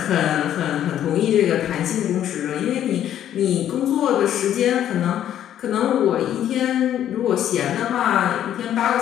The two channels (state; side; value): quieter; right; 10.9 dB